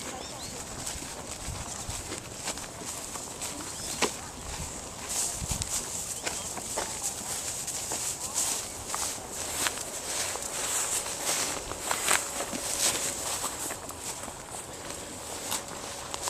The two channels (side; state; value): both; identical; correlation 1.00